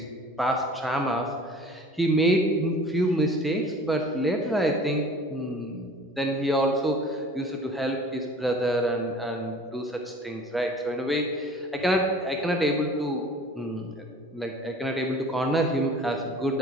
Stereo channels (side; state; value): both; normal; correlation 0.46